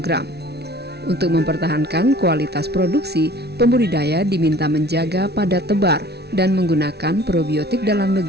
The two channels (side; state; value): left; late; 0.48 ms